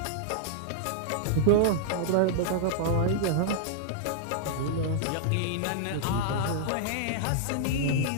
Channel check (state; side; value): different; both; correlation -0.01